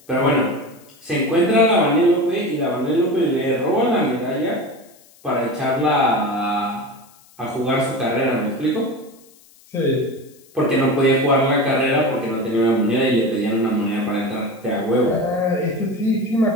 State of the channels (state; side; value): noise; left; hiss, 28 dB below the sound